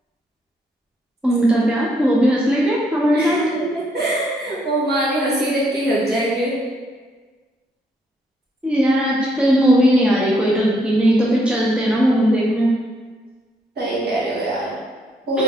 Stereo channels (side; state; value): both; normal; correlation 0.73